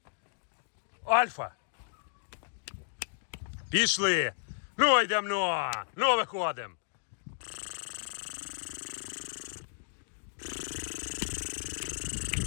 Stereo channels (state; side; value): silent; right; digital silence